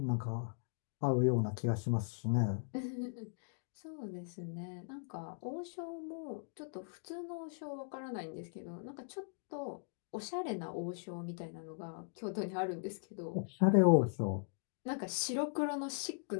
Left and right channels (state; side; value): silent; right; digital silence